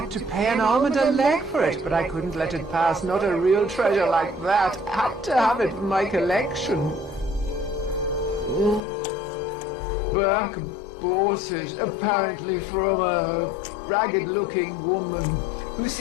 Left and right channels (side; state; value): right; drops out; at 8.8 s